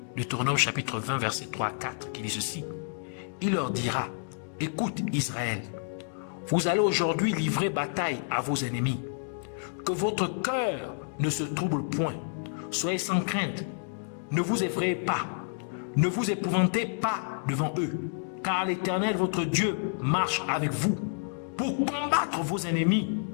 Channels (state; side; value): silent; right; digital silence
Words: Deutéronome chapitre 20, verset 3 à 4, qui dit ceci. Il leur dira, écoute Israël, vous allez aujourd'hui livrer bataille à vos ennemis. Que votre cœur ne se trouble point. Soyez sans crainte. Ne vous effrayez pas. Ne vous épouvantez pas devant eux. Car l'Éternel, votre Dieu, marche avec vous pour combattre vos ennemis,